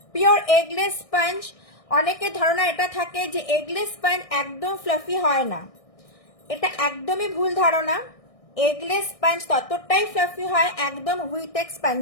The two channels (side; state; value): right; late; 1.6 ms